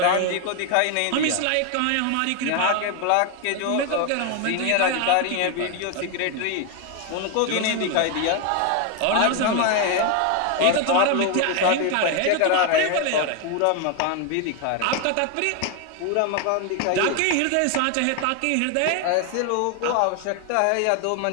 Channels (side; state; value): both; different; correlation 0.01